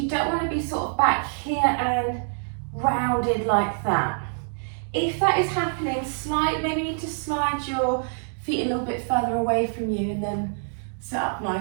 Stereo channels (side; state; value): left; silent; digital silence